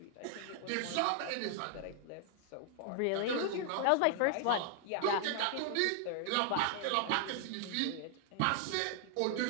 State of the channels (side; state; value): both; different; correlation 0.00